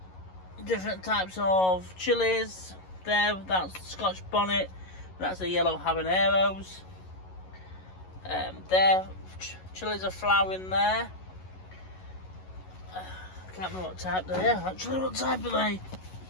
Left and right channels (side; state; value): right; late; 11 ms